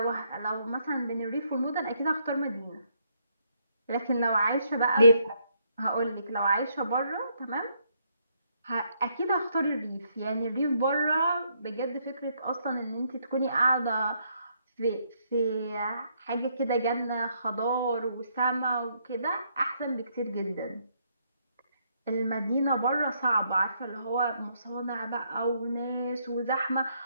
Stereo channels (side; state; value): both; inverted; correlation -0.73